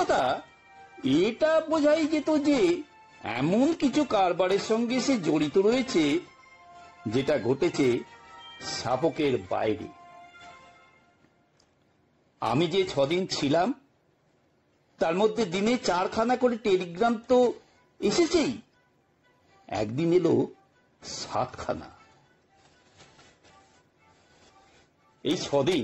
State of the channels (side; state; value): both; identical; correlation 1.00